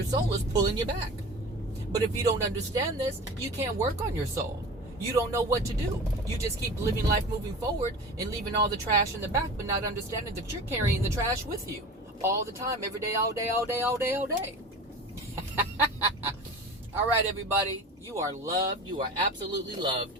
soul is pulling you back. But if you don't understand this, you can't work on your soul. You don't know what to do. You just keep living life moving forward and leaving all the trash in the back, but not understanding that you're carrying the trash with you all the time, every day, all day, all day, all day, all day. All right, everybody. You are loved. You are absolutely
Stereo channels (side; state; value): both; normal; correlation 0.35